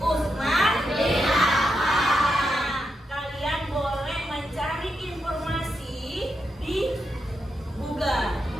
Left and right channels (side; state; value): both; normal; correlation 0.84